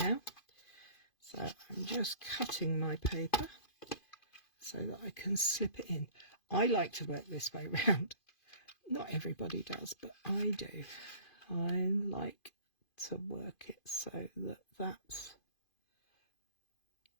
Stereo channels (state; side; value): late; right; 2.5 ms